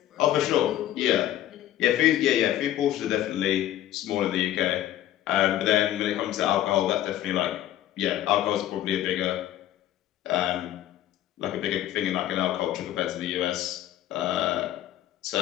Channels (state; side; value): quieter; right; 12.9 dB